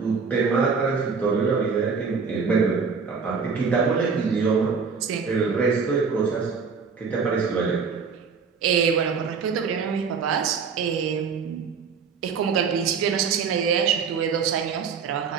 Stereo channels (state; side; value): quieter; left; 5.6 dB